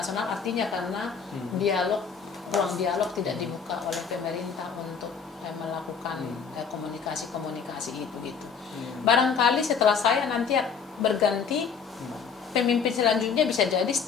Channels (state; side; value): quieter; right; 6.2 dB